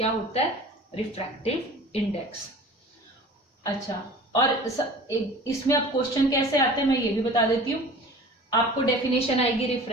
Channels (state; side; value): normal; both; correlation 0.42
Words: होता है? Refractive index. अच्छा, और इसमें अब क्वेश्चन कैसे आते हैं मैं ये भी बता देती हूँ। आपको डेफिनेशन आएगी